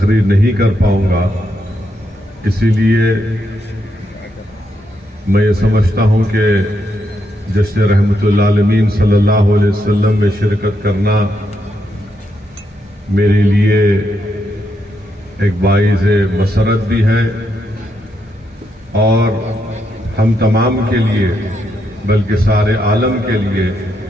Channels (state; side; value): normal; both; correlation 0.80